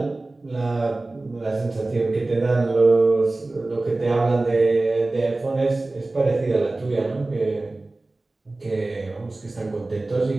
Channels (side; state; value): left; quieter; 3.0 dB